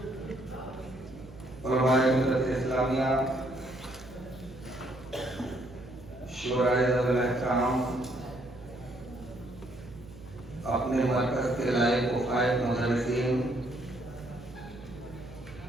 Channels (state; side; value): noise; right; hum, 18 dB below the sound